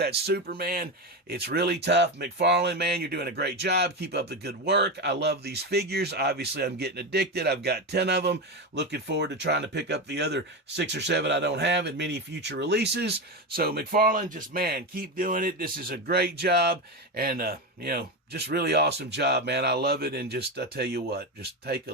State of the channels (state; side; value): normal; both; correlation 0.16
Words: Superman. It's really tough. Mcfarlane, man, you're doing a great job. Keep up the good work. I love these figures. Obviously, I'm getting addicted. I've got 10 of them. Looking forward to trying to pick up the other 6 or 7 I don't have in many future releases. So, Mcfarlane, just, man, keep doing it. This is a great job. And, just really awesome job, man. I love it. And just, I tell you what, just take a